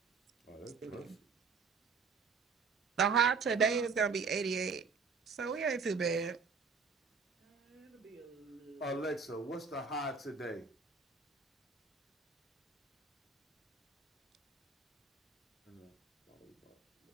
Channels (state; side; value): quieter; left; 5.2 dB